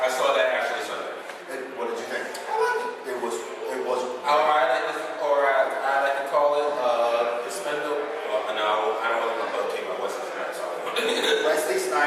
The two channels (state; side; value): identical; both; correlation 1.00